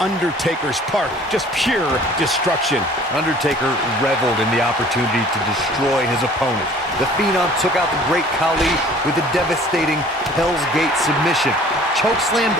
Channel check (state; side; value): normal; both; correlation 0.51